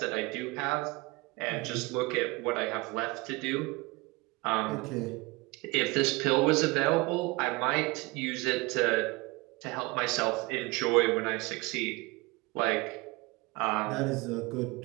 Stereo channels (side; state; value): left; quieter; 24.7 dB